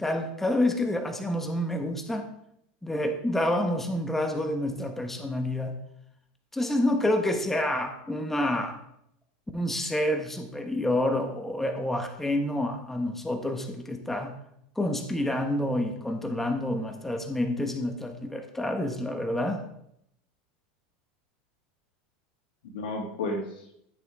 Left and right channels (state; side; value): normal; both; correlation 0.73